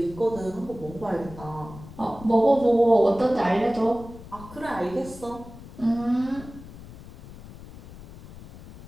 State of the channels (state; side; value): noise; left; rumble, 16 dB below the sound